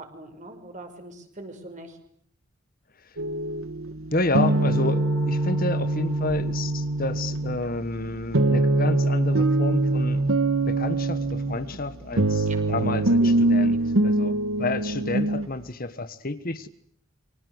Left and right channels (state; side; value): normal; both; correlation 0.48